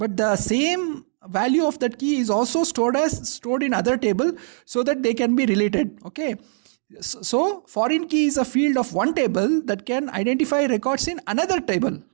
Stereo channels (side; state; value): left; silent; digital silence